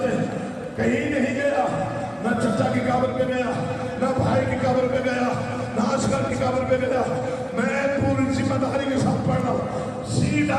کہیں نہیں گیا، نہ چچا کی قبر پہ گیا، نہ بھائی کی قبر پہ گیا، نہ اصغر کی قبر پہ گیا، میں پوری ذمہ داری کے ساتھ پڑھ رہا ہوں،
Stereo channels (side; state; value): both; identical; correlation 1.00